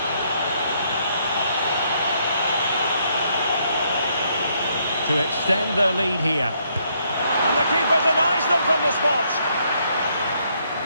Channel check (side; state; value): both; inverted; correlation -0.72